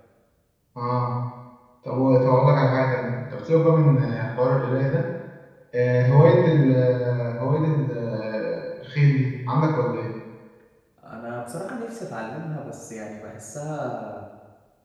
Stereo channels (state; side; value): identical; both; correlation 1.00